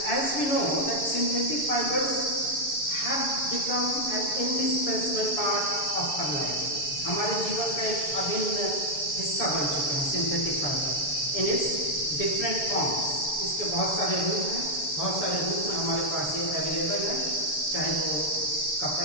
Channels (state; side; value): late; right; 7.0 ms